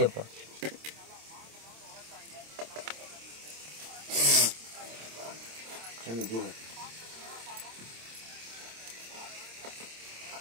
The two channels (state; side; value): late; left; 26 ms